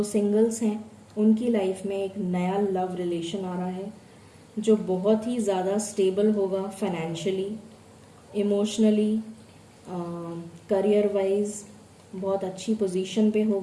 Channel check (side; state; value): both; identical; correlation 1.00